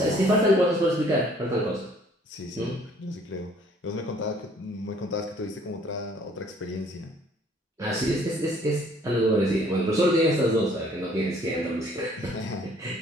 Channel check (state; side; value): normal; both; correlation 0.59